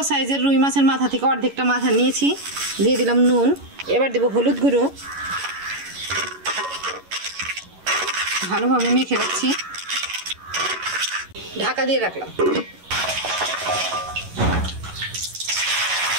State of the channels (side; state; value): left; late; 11 ms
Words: সাইজের রুই মাছের মাথা থেকে অর্ধেকটা মাথা নিয়েছি, দিয়ে দিলাম নুন। এবার দেবো হলুদ গুঁড়ো, ভালোভাবে মেখে রাখছি। ঢাকা দিয়ে রাখলাম।